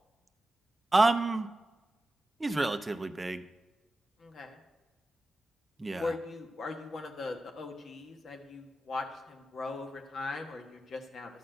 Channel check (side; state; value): both; normal; correlation 0.93